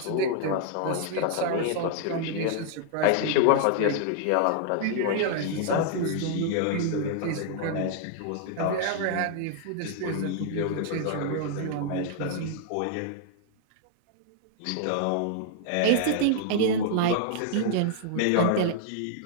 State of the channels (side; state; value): both; different; correlation 0.00